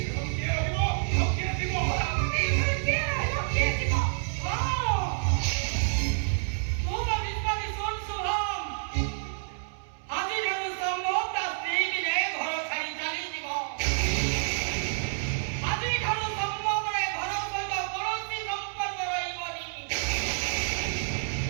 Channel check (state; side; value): silent; left; 59 dB below the other